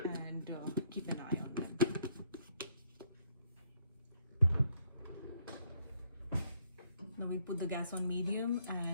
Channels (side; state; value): both; inverted; correlation -0.70